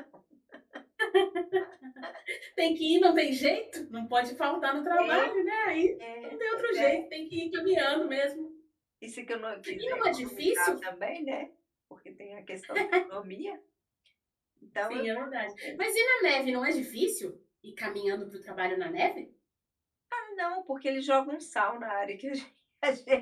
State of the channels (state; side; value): identical; both; correlation 1.00